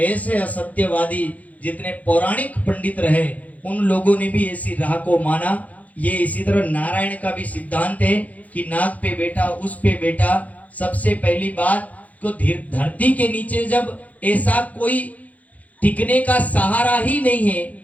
असत्यवादी जितने पौराणिक पंडित रहे उन लोगों ने भी ऐसी राह को माना। ये इसी तरह नारायण का भी सिद्धांत है कि नाग पे बैठा उस पे बैठा। सबसे पहली बात तो धरती के नीचे जब ऐसा कोई टिकने का सहारा ही नहीं है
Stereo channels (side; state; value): right; late; 0.074 ms